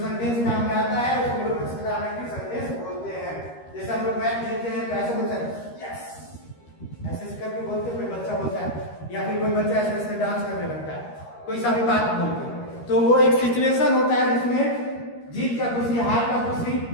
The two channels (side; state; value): right; late; 13 ms